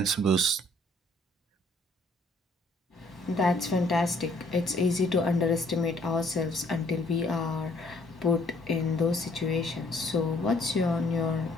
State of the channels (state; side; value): normal; both; correlation 0.63